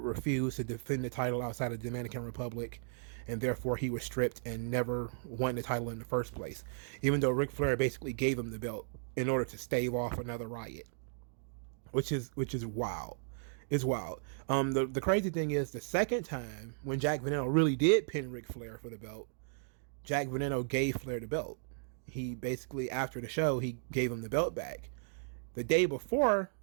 refuse to defend the title outside of the Dominican Republic, and therefore he was stripped and never won the title in the first place, even though Ric Flair basically gave him the belt in order to stave off another riot, which is wild. It's wild. The crazy thing is, the second time when Jack Veneno really did pin Ric Flair for the belt, Jack Veneno gave Flair the belt. He basically, after the show, he gave him the belt back. The day before,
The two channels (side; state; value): left; silent; digital silence